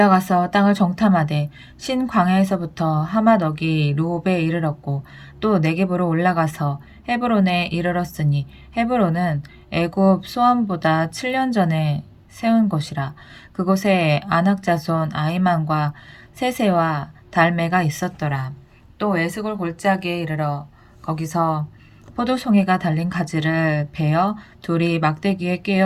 땅을 정탐하되 신 광야에서부터 하맛어기 루옵에 이르렀고 또 네겝으로 올라가서 헤브론에 이르렀으니 헤브론은 애굽 소안보다 7년 전에 세운 곳이라. 그곳에 아낙 자손 아히만과 세세와 달메가 있었더라. 또 에스골 골짜기에 이르러 거기서 포도송이가 달린 가지를 베어 둘이 막대기에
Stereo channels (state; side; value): identical; both; correlation 1.00